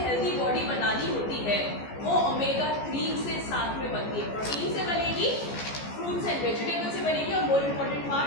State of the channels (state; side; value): late; right; 14 ms